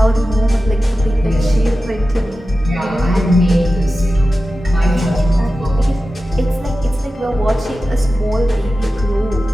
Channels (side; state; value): both; normal; correlation 0.94